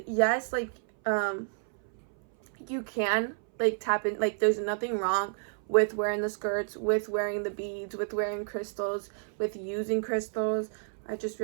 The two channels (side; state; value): left; silent; 58 dB below the other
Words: yes, like, you can, like, tap in, like, there's nothing wrong with wearing the skirts, with wearing the beads, with wearing crystals, with using crystals. I just